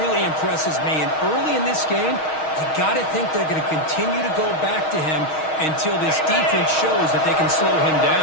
impresses me. And early in this game, you got to think they're going to continue to go back to him until this defense shows that they can slow him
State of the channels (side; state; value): right; late; 6.4 ms